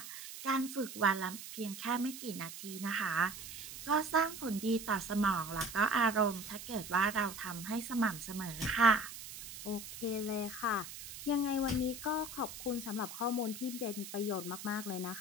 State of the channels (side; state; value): right; noise; hiss, 11 dB below the sound